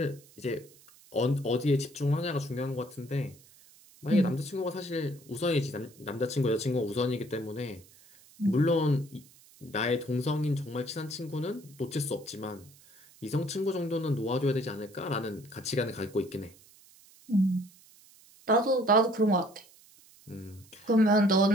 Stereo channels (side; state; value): right; noise; hiss, 25 dB below the sound